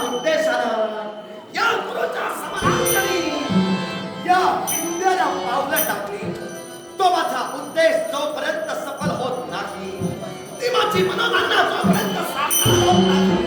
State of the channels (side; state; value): both; identical; correlation 1.00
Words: उद्देशानं या गुरुच्या समानांतरी या विंध्याला पावलं टाकली तो माझा उद्देश जोपर्यंत सफल होत नाही, ती माझी मनोकामना जोपर्यंत साकार होत नाही,